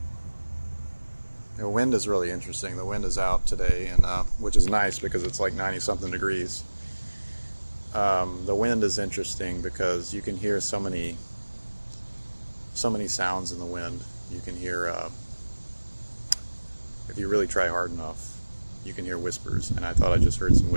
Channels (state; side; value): inverted; both; correlation -1.00